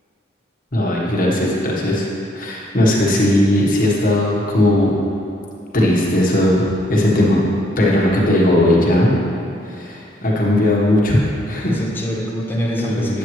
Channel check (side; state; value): both; normal; correlation 0.70